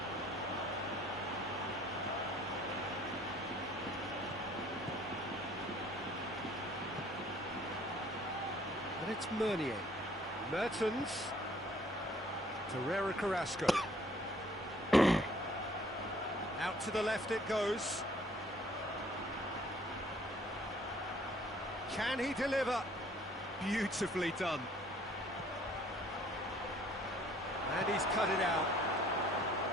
And it's Meunier. Mertens. Torreira Carrasco. Out to the left it goes. Can he deliver? Beautifully done. And he's cut it out.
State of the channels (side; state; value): both; normal; correlation 0.58